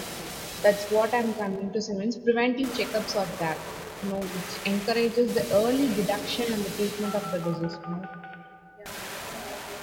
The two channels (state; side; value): identical; both; correlation 1.00